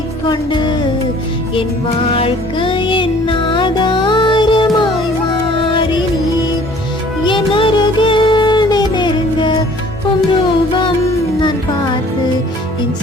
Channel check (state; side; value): normal; both; correlation 0.53